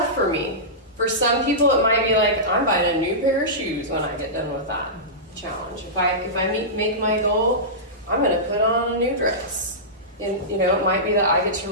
for me. For some people, it might be like, I'm buying a new pair of shoes when I get done with that challenge. If I make my goal, I'm going to put on a new dress. And, you know, it might be that I get to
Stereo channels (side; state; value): both; normal; correlation -0.16